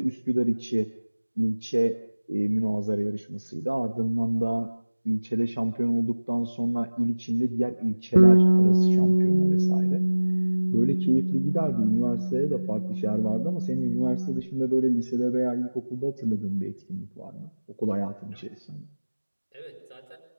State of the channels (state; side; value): inverted; both; correlation -1.00